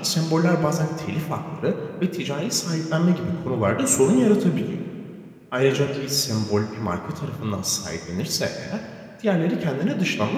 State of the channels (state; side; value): identical; both; correlation 1.00